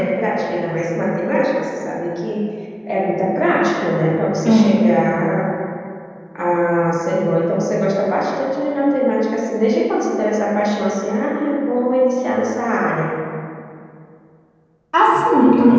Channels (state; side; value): identical; both; correlation 1.00